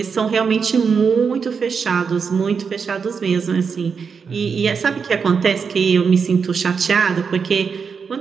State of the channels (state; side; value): quieter; left; 5.9 dB